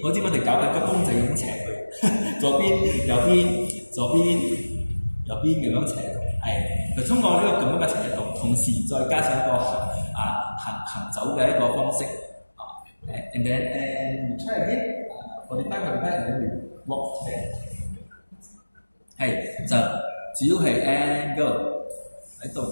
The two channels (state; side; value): inverted; both; correlation -1.00